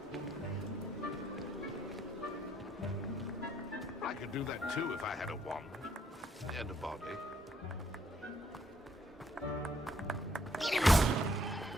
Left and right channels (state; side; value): normal; both; correlation 0.69